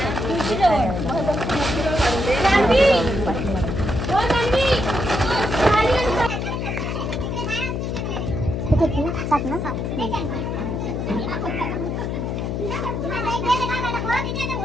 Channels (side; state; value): left; noise; hum, 2 dB below the sound